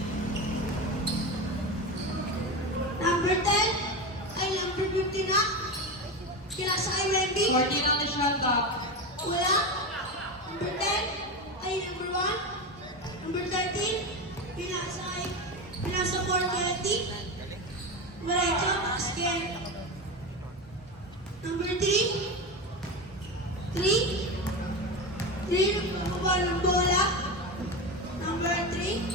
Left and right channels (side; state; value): both; normal; correlation 0.20